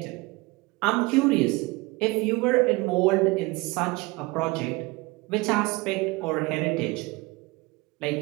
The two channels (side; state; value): left; quieter; 23.8 dB